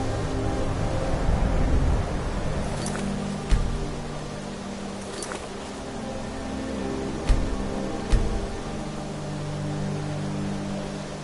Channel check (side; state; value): both; identical; correlation 1.00